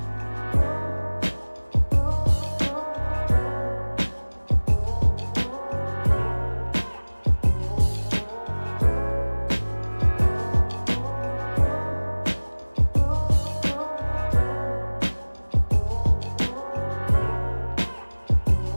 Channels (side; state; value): both; inverted; correlation -1.00